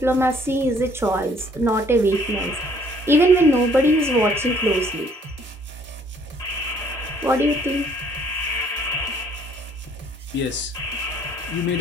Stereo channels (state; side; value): normal; both; correlation 0.61